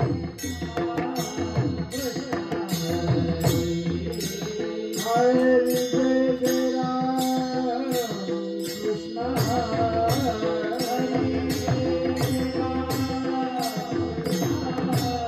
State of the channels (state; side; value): identical; both; correlation 1.00